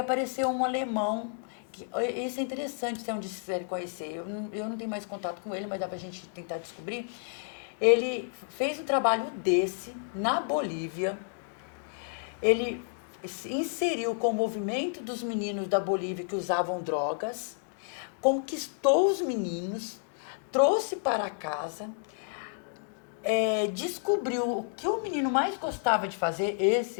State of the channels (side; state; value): right; silent; 57 dB below the other